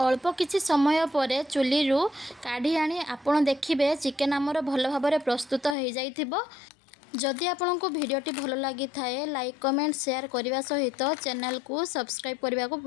किछि समय पर चुली रू काढ़ी आनी आपण देखिबे चिकेन आमर भल भाबरे प्रस्तुत हो जाइथिबो। जदि आपंक भिडियोटी भल लगी थाए लाइक कमेंट शेयर करने सहित चैनल को सब्सक्राइब करने को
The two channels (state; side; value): drops out; right; at 5.8 s